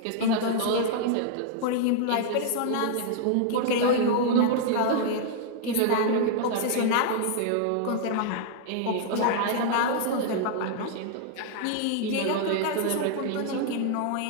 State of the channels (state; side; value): different; both; correlation -0.01